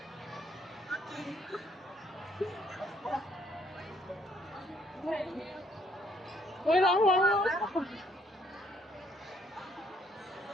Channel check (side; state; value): both; normal; correlation 0.66